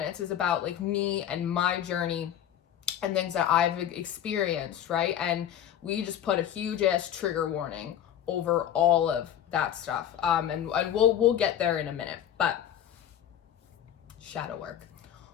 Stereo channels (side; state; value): right; quieter; 10.3 dB